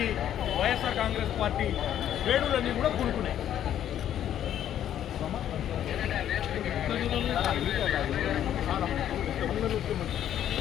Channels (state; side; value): quieter; right; 10.7 dB